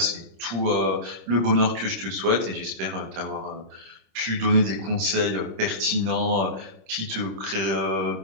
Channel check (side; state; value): left; late; 26 ms